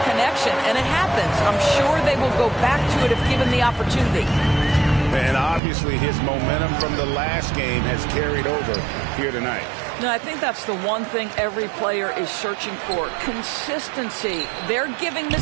connection, and it happens. I'm sure they will go back to it if given the opportunity. And obviously his momentum from the last game has carried over here tonight. No, I think that's the one thing every player is searching for. Consistency. They're giving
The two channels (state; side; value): drops out; left; at 5.6 s